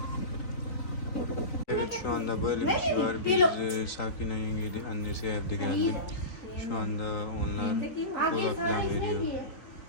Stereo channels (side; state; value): right; late; 4.2 ms